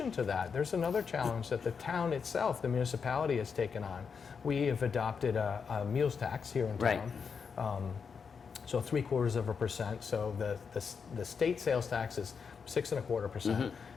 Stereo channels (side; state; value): right; quieter; 6.0 dB